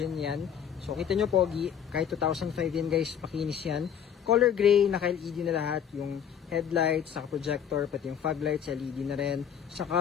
yan. So kita nyo pogi, kahit 2005 yan guys, pakinis yan. Color gray, naka-LED na lahat, yung headlights, saka projector, pati yung fog lights, LED na rin. Saka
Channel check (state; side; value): quieter; right; 8.5 dB